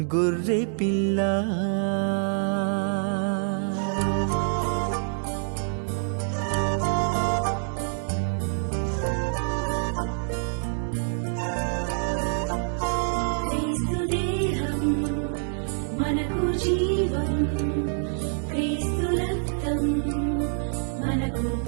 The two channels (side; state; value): left; silent; digital silence